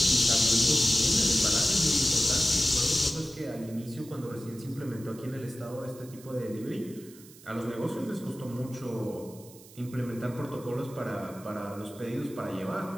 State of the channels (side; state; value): right; noise; hiss, 21 dB below the sound